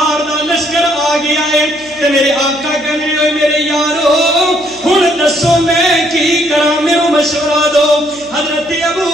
دا لشکر آ گیا ہے تے میرے آقا کہنے ہوئے میرے یارو ہن دسو میں کی کراں میرے مشورہ دو حضرت ابو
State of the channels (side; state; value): right; noise; hum, 25 dB below the sound